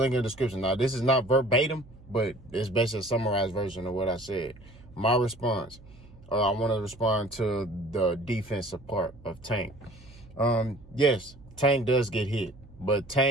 link in the description. Now, this is not verbatim, but it's basically a summarized version of what I said. My response, I want to respond to the defensive part of Tank. Yes, Tank does get hit, but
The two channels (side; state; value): right; noise; hum, 22 dB below the sound